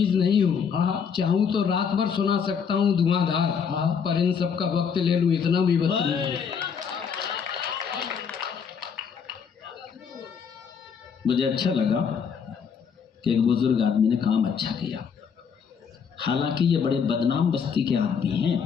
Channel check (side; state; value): right; quieter; 6.7 dB